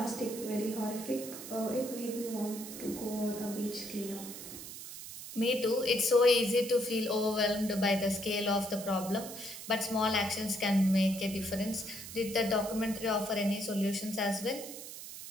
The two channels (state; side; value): noise; right; hiss, 11 dB below the sound